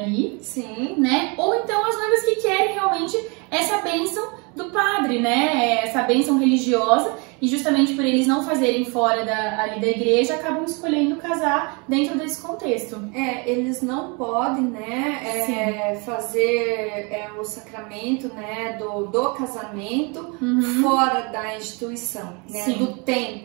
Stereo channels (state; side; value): quieter; left; 31.3 dB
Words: Sim. Né? Ou então as noivas que querem realmente essa bênção do padre, né? Essa bênção religiosa, e justamente por eles não fazerem fora ali da igreja, acabam escolhendo casar dentro desse contexto. Eles não podem, né, fazer o sacramento, né, do casamento fora da instituição, né, do